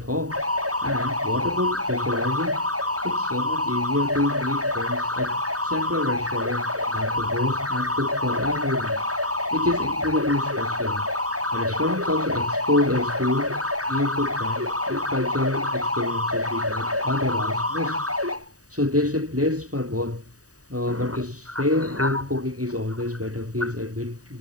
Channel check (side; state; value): left; late; 0.66 ms